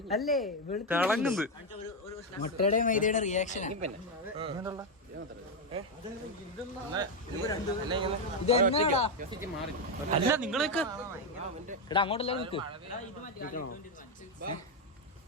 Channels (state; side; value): normal; both; correlation 0.05